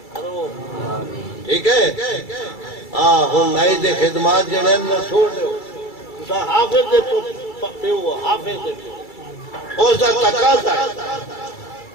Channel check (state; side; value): late; right; 2.3 ms